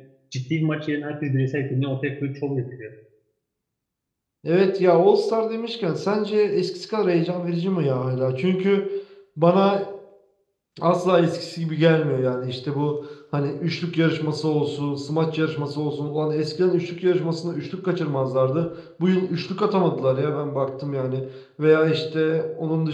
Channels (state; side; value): identical; both; correlation 1.00